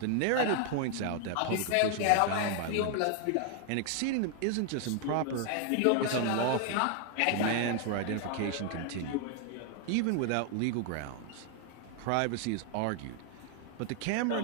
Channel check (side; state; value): both; different; correlation 0.00